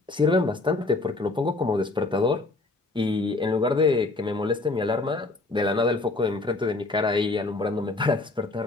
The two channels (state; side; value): quieter; right; 3.2 dB